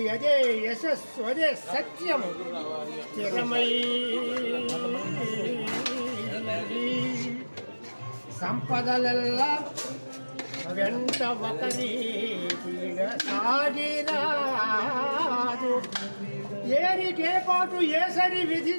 అదే యశస్సు అదే సత్యం స్థిరమై సంపదలల్లా వెంట ఒకరి సాగిరాదు ఏరికే పాటు ఏసరి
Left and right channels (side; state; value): both; inverted; correlation -1.00